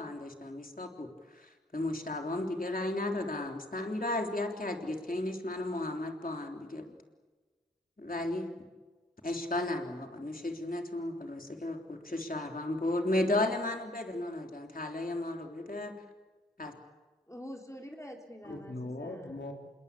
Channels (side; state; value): both; normal; correlation 0.63